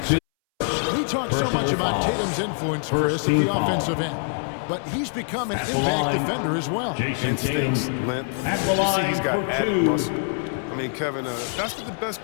We talk so much about Tatum's influence, Chris, at the offensive end. But he's become an impact defender as well. Jason Tatum Instincts, length. at the You see line he's got for added 2. muscle. I mean, Kevin, that's what the best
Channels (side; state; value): right; silent; 61 dB below the other